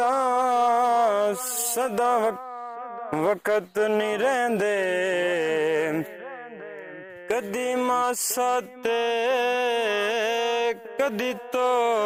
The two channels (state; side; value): identical; both; correlation 1.00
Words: ਸਦਾ ਵਕਤ ਨੀ ਰਹਿੰਦੇ ਕਦੀ ਮਾਸਾ ਤੇ ਕਦੀ